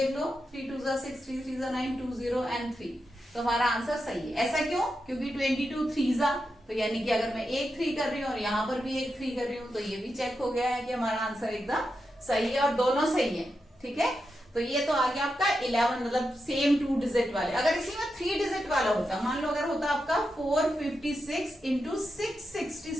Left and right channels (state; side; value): normal; both; correlation 0.87